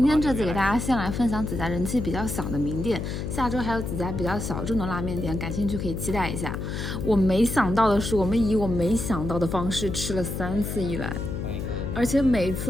天这次给大家先来分享几家人气比较小的名店，下周还有几家比较小众的拉面店，感兴趣可以期待一下。我没想到的是，我们以我没想到的方式吃了3次一兰，而且每一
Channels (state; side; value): noise; left; hum, 4 dB below the sound